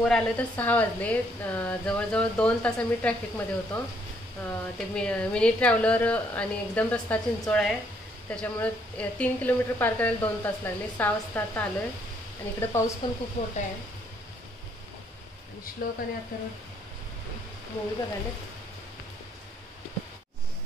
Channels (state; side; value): normal; both; correlation 0.69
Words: आले तर 6 वाजले। जवळजवळ 2 तास आम्ही ट्रॅफिकमध्ये होतो। ते मिनी ट्रॅव्हलर आणि एकदम रस्ता चिंचोळा आहे, त्याच्यामुळे 3 किलोमीटर पार करायला 2 तास लागले। 6 वाजता आता आलो आहे आणि इकडे पाऊस पण खूप मोठा आहे। आणि श्लोक आणि आता मूवी बघायला